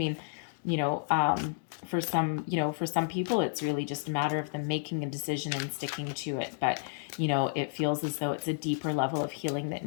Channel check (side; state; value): right; silent; digital silence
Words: for some people, it's really just a matter of them making a decision and sticking to it. But, it feels as though it's a deeper level of healing that